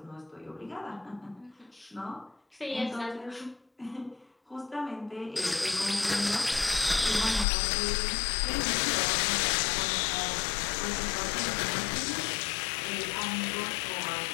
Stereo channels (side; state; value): right; drops out; at 7.5 s